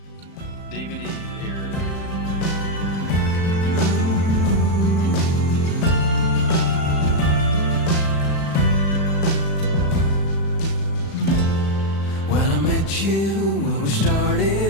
here. When I met you, when we started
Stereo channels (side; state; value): right; late; 35 ms